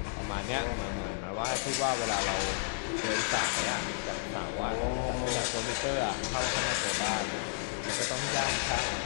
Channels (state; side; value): silent; right; digital silence